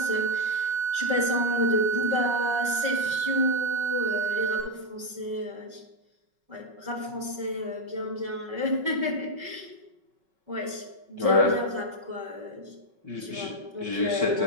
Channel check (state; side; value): late; left; 5.2 ms